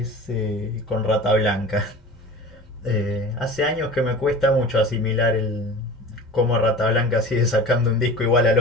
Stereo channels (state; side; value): normal; both; correlation 0.37